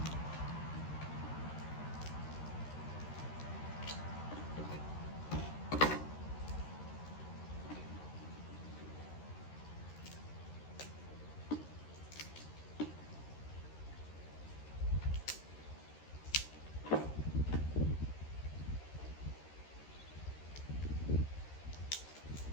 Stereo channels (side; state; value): right; late; 13 ms